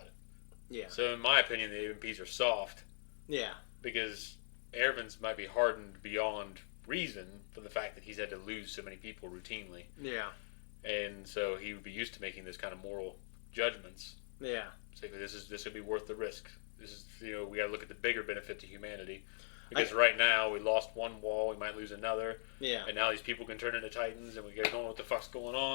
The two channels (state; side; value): silent; right; 51 dB below the other